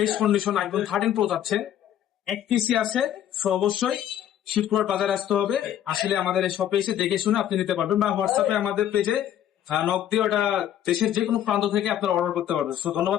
কন্ডিশন আইফোন 13 প্রো যাচ্ছে, এক পিসি আছে, সো অবশ্যই শিবপুর বাজারে আসতে হবে। আসলে আমাদের এই শপে এসে দেখে শুনে আপনি নিতে পারবেন, বা হোয়াটসঅ্যাপে আমাদের পেজে নক দিয়ে ওটা দেশের যে কোনো প্রান্ত থেকে আপনারা অর্ডার করতে পারবেন। সো ধন্যবাদ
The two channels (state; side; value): quieter; right; 10.9 dB